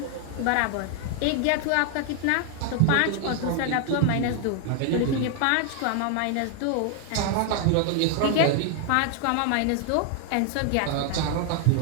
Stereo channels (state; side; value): different; both; correlation 0.00